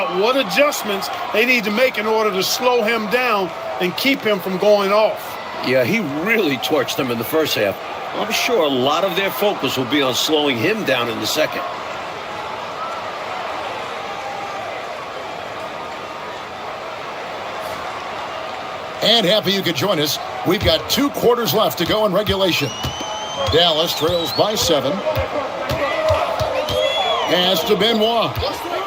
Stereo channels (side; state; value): both; identical; correlation 1.00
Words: what adjustments they need to make in order to slow him down and keep him from going off. Yeah, he really torched them in the first half. I'm sure a lot of their focus will be on slowing him down in the second. And happy you could join us. We've got 2 quarters left to go in regulation. Dallas trails by 7. Pass to Benoit.